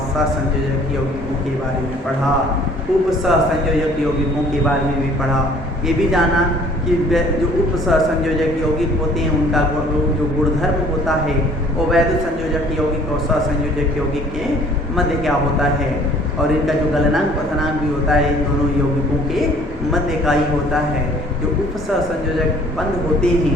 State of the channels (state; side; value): normal; both; correlation 0.55